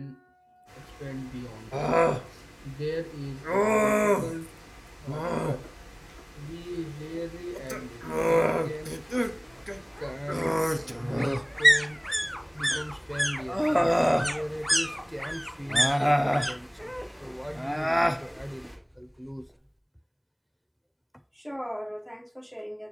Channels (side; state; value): both; identical; correlation 1.00